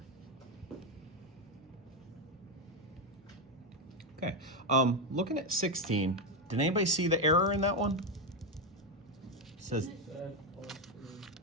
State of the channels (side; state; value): both; normal; correlation 0.08